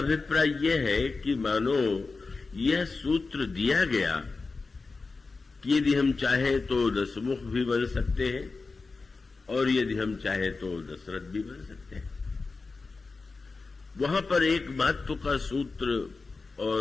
यह है कि मानो यह सूत्र दिया गया कि यदि हम चाहें तो दशमुख भी बन सकते हैं और यदि हम चाहें तो दशरथ भी बन सकते हैं। वहां पर एक महत्व का सूत्र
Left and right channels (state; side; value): quieter; right; 4.0 dB